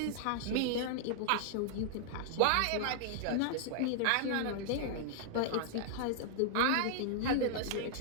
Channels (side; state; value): both; different; correlation -0.01